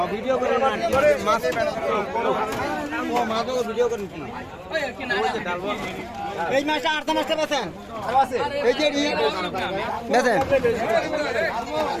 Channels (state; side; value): identical; both; correlation 1.00